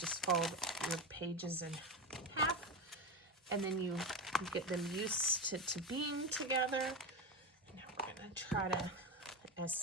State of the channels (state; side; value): normal; both; correlation 0.17